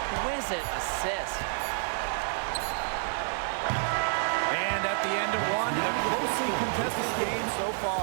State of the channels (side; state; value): left; silent; digital silence